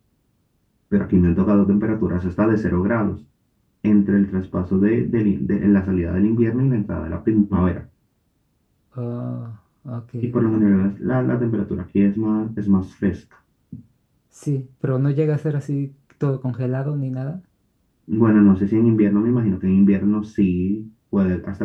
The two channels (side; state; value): both; identical; correlation 1.00